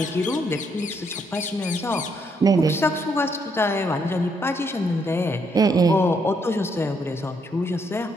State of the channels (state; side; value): normal; both; correlation 0.73